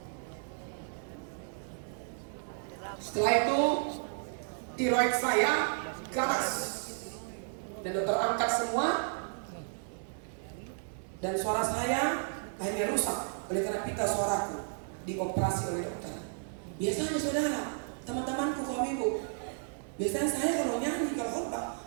Setelah itu tiroid saya ganas dan dokter angkat semua, dan suara saya akhirnya rusak oleh karena pita suaraku dioperasi oleh dokter. Biasanya saudara, teman-temanku kaum ibu, biasanya saya kalau nyanyi, kalau khotbah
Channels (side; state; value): left; silent; digital silence